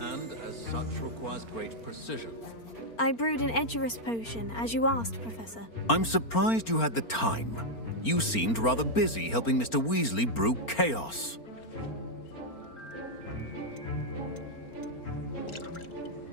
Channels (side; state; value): right; late; 4.4 ms